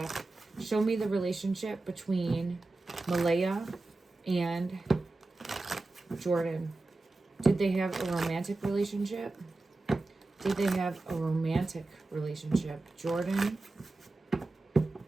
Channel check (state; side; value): quieter; left; 3.2 dB